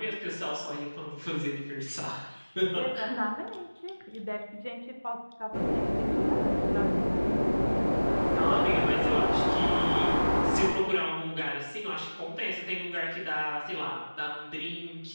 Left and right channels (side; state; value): both; inverted; correlation -1.00